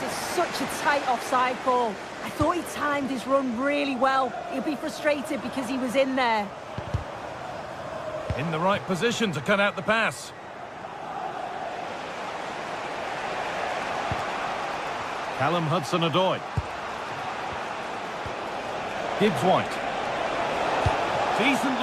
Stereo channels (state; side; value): identical; both; correlation 1.00